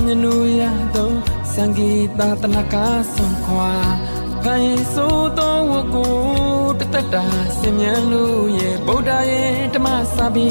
မြနူရသောစံဂီတာတနကားဆွန်ခွာခိုင်ဆိုးသောဝကိုတသက်တာစင်မြန်းလို့ရဲ့ဗုဒ္ဓရဲ့ဓမ္မစာပေ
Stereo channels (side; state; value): both; inverted; correlation -1.00